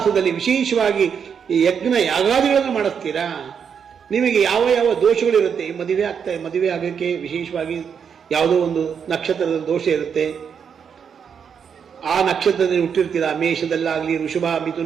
ವಿಶೇಷವಾಗಿ ಈ ಯಜ್ಞ ಯಾಗಾದಿಗಳನ್ನು ಮಾಡಿಸ್ತೀರಾ, ನಿಮಗೆ ಯಾವ ದೋಷಗಳಿರುತ್ತೆ, ಮದುವೆ ಆಗೋಕ್ಕೆ ವಿಶೇಷವಾಗಿ ಯಾವುದೋ ಒಂದು ನಕ್ಷತ್ರದ ದೋಷ ಇರುತ್ತೆ, ಆ ನಕ್ಷತ್ರದಲ್ಲಿ ಹುಟ್ಟಿರ್ತೀರಾ. ಮೇಷದಲ್ಲಾಗಲಿ ಋಷಭ,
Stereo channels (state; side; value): quieter; left; 7.1 dB